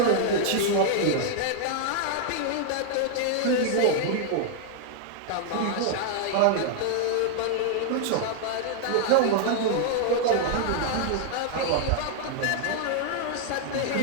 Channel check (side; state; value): both; different; correlation -0.01